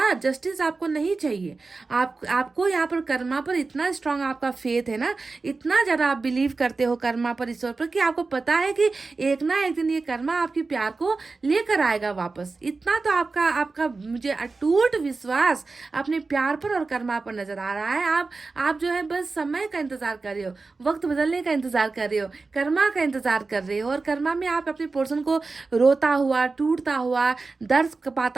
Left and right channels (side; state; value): left; quieter; 3.9 dB